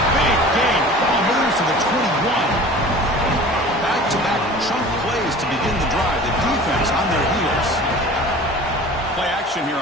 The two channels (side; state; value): both; normal; correlation 0.42